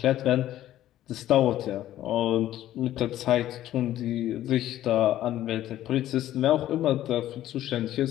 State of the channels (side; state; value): right; quieter; 13.2 dB